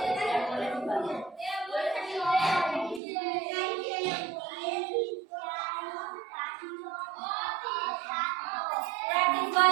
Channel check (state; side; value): drops out; left; at 3.0 s